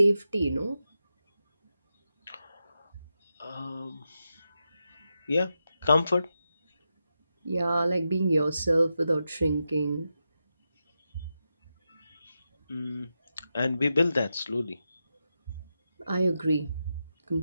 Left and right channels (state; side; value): inverted; both; correlation -0.88